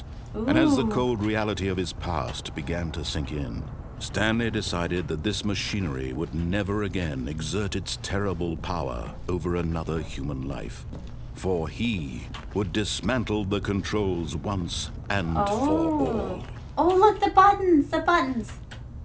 And as the cold reality of his past began to sink in, Stanley decided that this machinery would never again exert its terrible power over another human life. For he would dismantle the controls once and for all. Oh, look, the buttons.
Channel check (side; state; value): both; identical; correlation 1.00